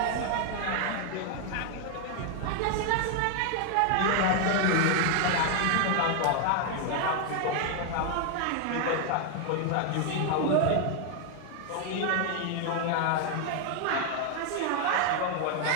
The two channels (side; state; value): both; different; correlation 0.01